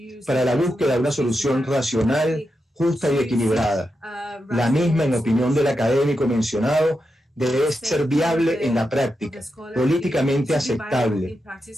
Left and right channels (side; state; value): both; normal; correlation 0.87